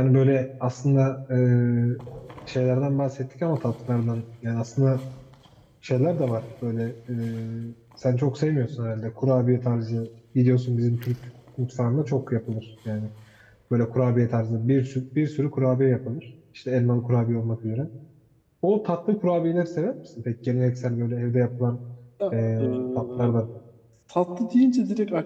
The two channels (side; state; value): both; identical; correlation 1.00